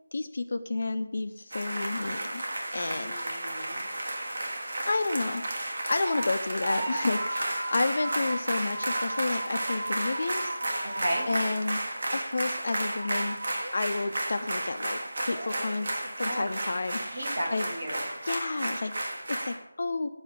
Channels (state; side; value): inverted; both; correlation -0.94